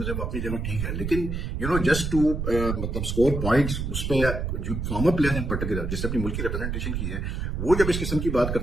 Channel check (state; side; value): noise; right; rumble, 3 dB below the sound